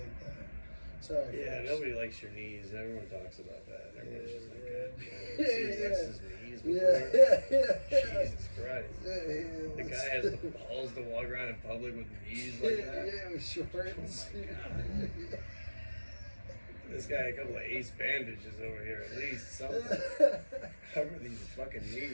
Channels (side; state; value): both; inverted; correlation -1.00